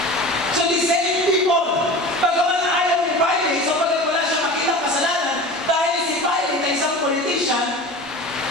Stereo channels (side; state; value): both; normal; correlation 0.35